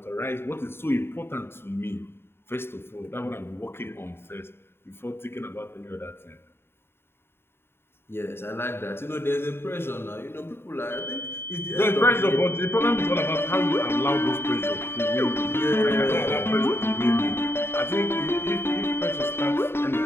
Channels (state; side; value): late; right; 0.11 ms